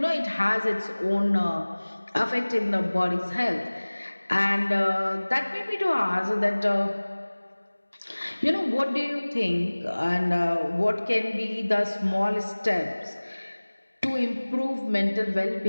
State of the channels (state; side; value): inverted; both; correlation -1.00